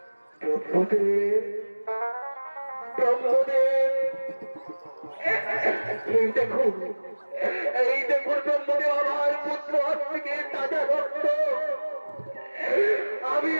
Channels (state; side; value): inverted; both; correlation -1.00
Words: ব্রহ্মদেব, ব্রহ্মদেব, এই দেখুন, এই দেখুন ব্রহ্মদেব, আমার পুত্র আজ থেকে তাজা রক্ত। আমি